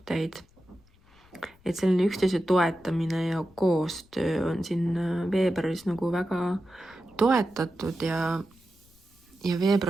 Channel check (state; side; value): noise; left; rumble, 30 dB below the sound